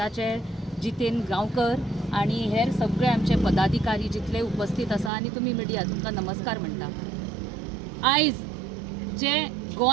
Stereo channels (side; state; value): left; drops out; at 5.1 s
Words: जितेन गांवकर आणि हेर सगळे आमचे पदाधिकारी जितले उपस्थित आसा आणि तुम्ही मिडिया, तुमकां नमस्कार म्हणटा। आयज जे